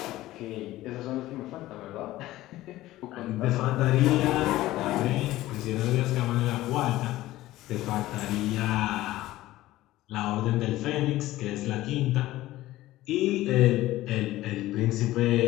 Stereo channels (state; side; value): quieter; right; 16.3 dB